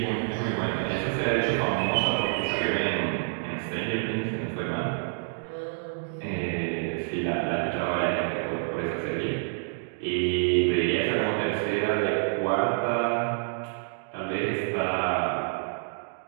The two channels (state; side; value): silent; left; digital silence